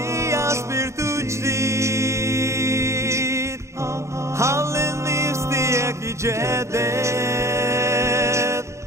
spiritu jdid Hallin nifstiek i jedet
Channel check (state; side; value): late; left; 0.14 ms